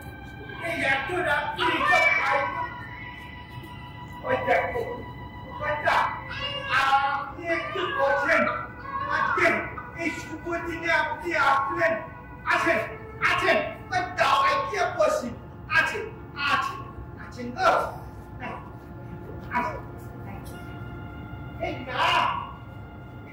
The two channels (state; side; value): identical; both; correlation 1.00